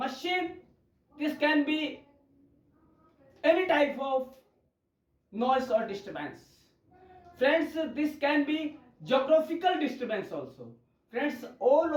this can be any type of noise or disturbance. Friends, this can be geographical disturbance also. Friends, all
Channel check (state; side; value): identical; both; correlation 1.00